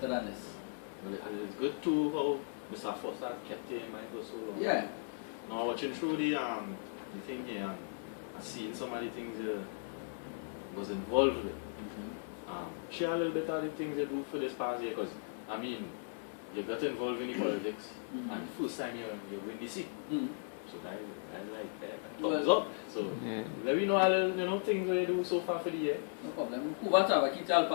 than this. Well, it's good too how Mr. Foster kept it in mind for so long. Yeah. Now watching through the thing here and seeing some of the things was involved with. Share a little bit of the things you do for this past year, because I mean you got involved in the politics and first time you win the seat. So I like that. Thumbs up. So let me know a little things that you do so far for the year. No problem.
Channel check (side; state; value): right; silent; 53 dB below the other